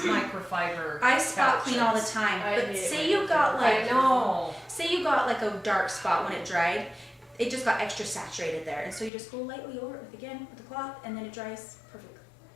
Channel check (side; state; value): right; drops out; at 9.1 s